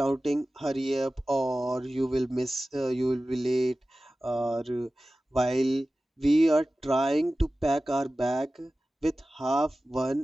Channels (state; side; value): normal; both; correlation 0.96